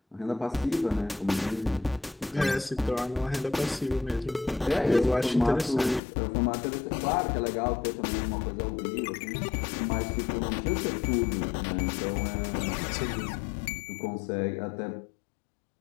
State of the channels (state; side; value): drops out; right; at 6.0 s